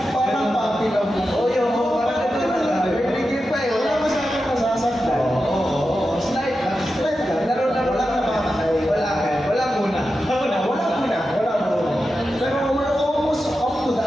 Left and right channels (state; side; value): normal; both; correlation 0.91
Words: Parang papi lang po. Oo, yun, parang ito na. Nagigil pa eh. Wala masyadong masasaktan. Oo, slide lang. Slide lang. Laro lang namakatay. Wala muna. Pero we're almost up to